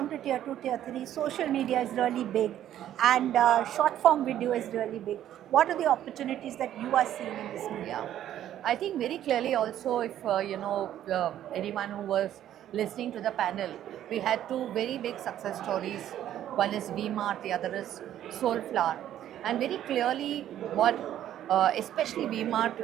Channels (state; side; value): quieter; left; 11.6 dB